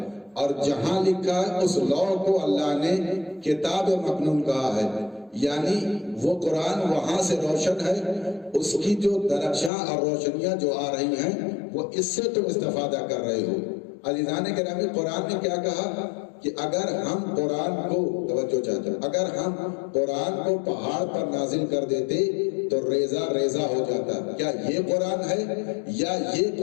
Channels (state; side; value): drops out; right; at 9.7 s